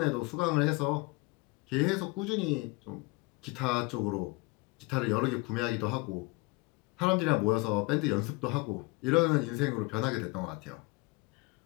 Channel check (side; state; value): right; quieter; 25.6 dB